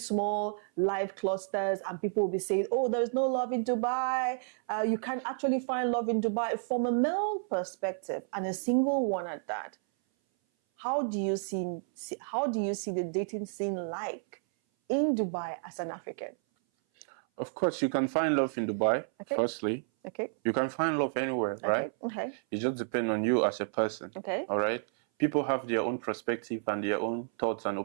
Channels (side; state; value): left; silent; 57 dB below the other